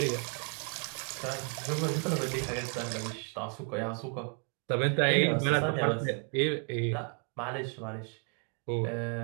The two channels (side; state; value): left; quieter; 39.8 dB